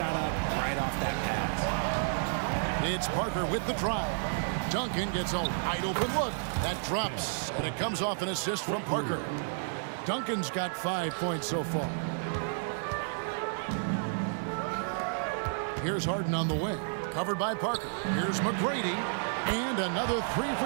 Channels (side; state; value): left; silent; 57 dB below the other